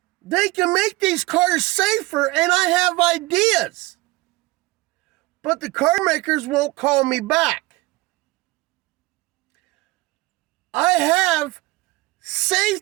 They can make these cars safer, and I have ideas. But the car makers won't call me back. I have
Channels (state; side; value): quieter; left; 20.8 dB